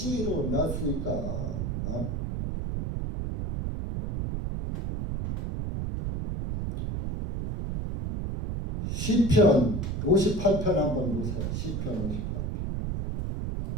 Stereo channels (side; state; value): right; noise; rumble, 3 dB below the sound